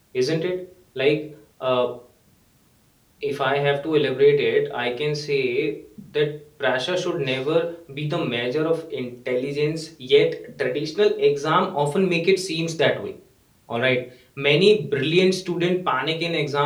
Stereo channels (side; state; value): both; identical; correlation 1.00